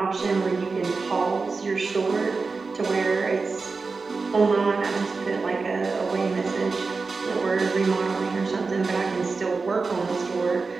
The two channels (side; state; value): left; quieter; 4.3 dB